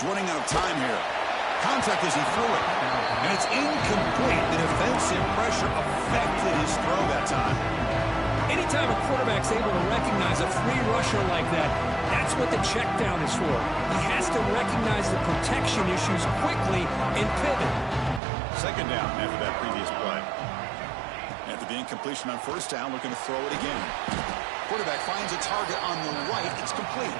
running out of time here. Contact as he threw it. And it's incomplete. The defensive pressure affected his throw that time. Anytime a quarterback's able to recognize a free rusher like that, that's what the check down is for. He has to recognize the protection issues quickly and pivot. Second down after that previous play. After the incompletion on first down, looking to throw it again. Quarterback finds a target on the right. It's complete.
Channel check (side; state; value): left; drops out; at 18.2 s